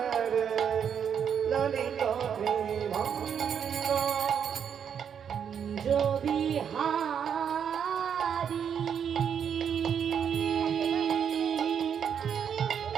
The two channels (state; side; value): quieter; left; 7.9 dB